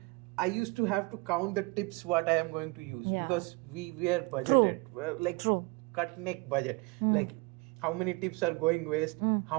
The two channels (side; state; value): left; quieter; 27.2 dB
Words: I used to have to count the tips what I am going to use, because we were budgeted. Cut neck budget. Like how many tips are going waste,